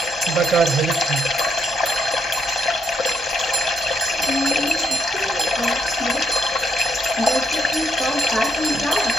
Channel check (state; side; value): normal; both; correlation 0.76